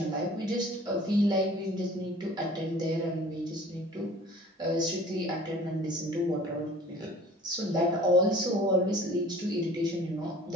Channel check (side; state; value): both; normal; correlation 0.48